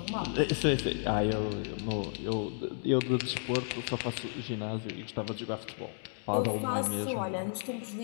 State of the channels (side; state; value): right; silent; 56 dB below the other